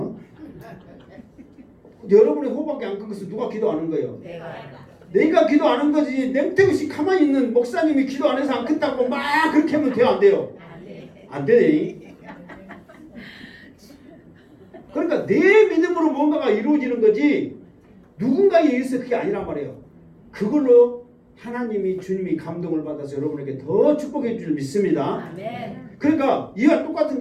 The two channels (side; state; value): both; identical; correlation 1.00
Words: 여러분의 호박이 안 큰 것은 누가 기도 안 한 거예요? 내가 기도 안 한 거지. 냉태우시 가만히 있는 목사님이 기도 안 해서 안 큰다고 막 그렇게 하면 돼요? 안 돼요? 안 돼. 그러니까 내 믿음으로 뭔가가 이루어지는 거지 누군가에 의해서 그게 아니란 말이에요. 그걸로 하나님이 주님이 감동을 받아서 여러분에게 더 축복해 줄 믿습니다. 아멘. 그러니까 이와 똑같은